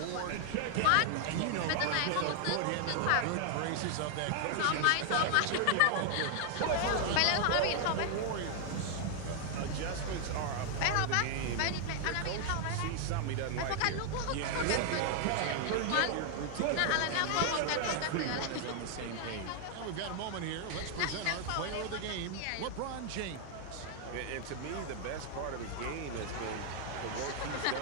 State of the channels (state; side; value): different; both; correlation 0.00